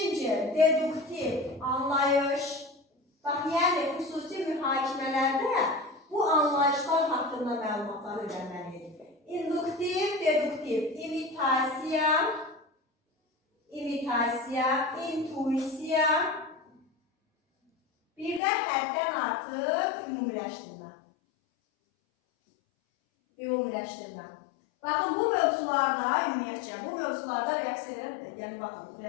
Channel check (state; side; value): drops out; right; at 18.4 s